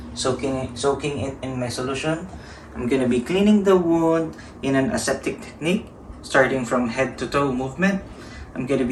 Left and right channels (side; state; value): both; identical; correlation 1.00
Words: soaking it in my solution. I'm gonna be cleaning the wound in an aseptic technique, starting from head to toe movement. I'm gonna